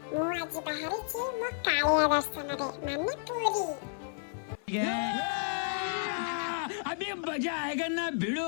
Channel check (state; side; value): silent; right; digital silence